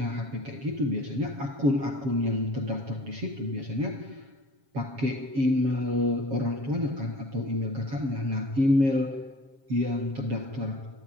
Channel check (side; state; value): left; late; 7.4 ms